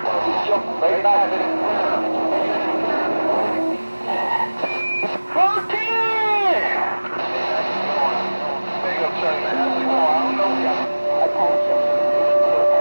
Jump right back in it. 14! Big up, Chuck, man. How's it going? I don't know you. Attention,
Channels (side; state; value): both; inverted; correlation -1.00